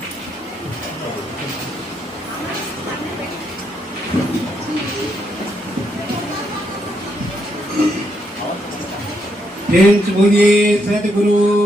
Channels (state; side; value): normal; both; correlation 0.77